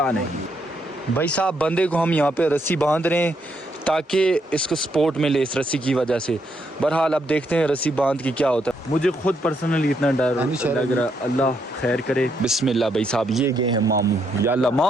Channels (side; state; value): both; normal; correlation 0.76